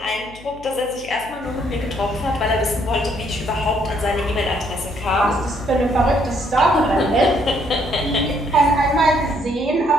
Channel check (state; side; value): noise; left; hum, 20 dB below the sound